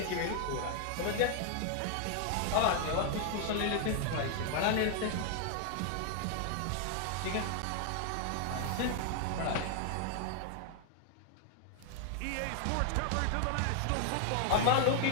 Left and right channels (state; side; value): different; both; correlation 0.00